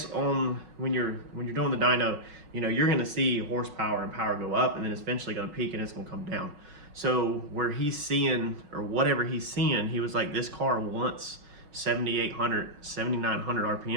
on when you're doing the dyno, you know, you're going to see horsepower and power go up, and then it's eventually going to peak and it's going to come down. So where he's seeing, or whatever he's seeing, he was like, this car wants 7,800, 7,900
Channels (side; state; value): left; late; 5.4 ms